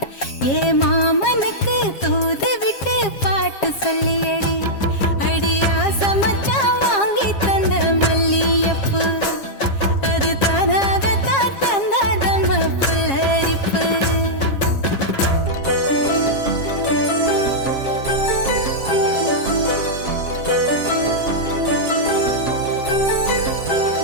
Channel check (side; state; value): right; late; 7.4 ms